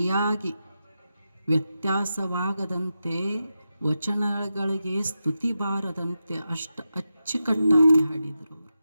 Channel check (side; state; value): both; inverted; correlation -0.90